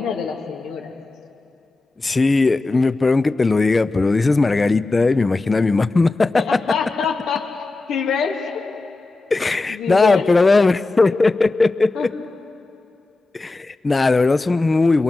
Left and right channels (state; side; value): quieter; right; 3.3 dB